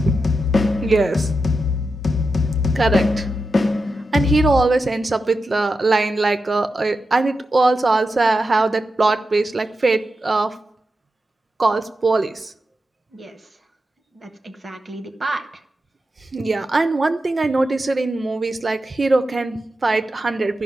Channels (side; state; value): both; normal; correlation 0.89